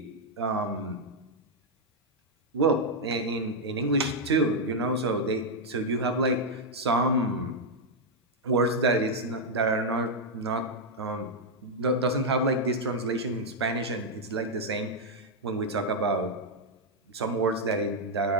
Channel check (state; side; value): normal; both; correlation -0.02